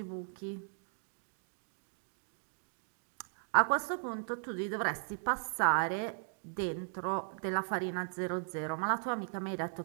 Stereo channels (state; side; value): silent; left; digital silence